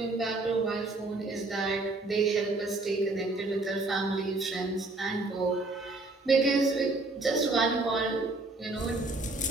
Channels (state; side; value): quieter; left; 3.2 dB